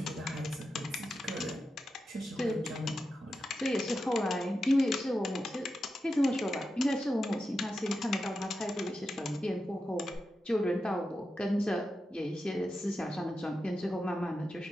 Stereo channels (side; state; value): both; normal; correlation 0.90